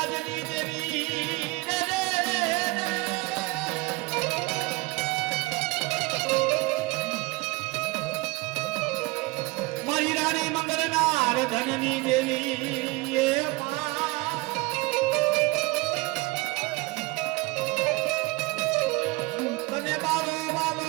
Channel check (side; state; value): left; quieter; 23.0 dB